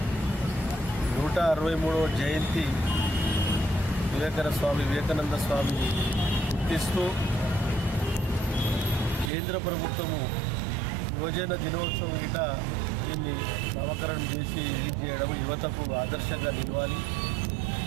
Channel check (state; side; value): drops out; left; at 9.3 s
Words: 163వ జయంతి వివేకానంద స్వామిని గుర్తిస్తూ కేంద్ర ప్రభుత్వము యువజన దినోత్సవం గిట దీన్ని నామకరణం చేసి రిలీజ్ చేయడం యువతకు ఆదర్శంగా నిలవాలి.